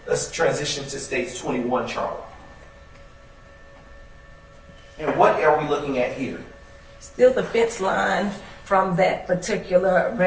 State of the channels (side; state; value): both; identical; correlation 1.00